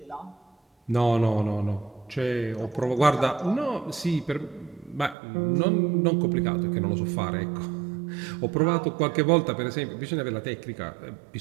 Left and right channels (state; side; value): drops out; left; at 5.2 s